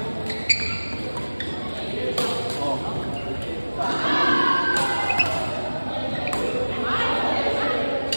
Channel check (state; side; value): inverted; both; correlation -1.00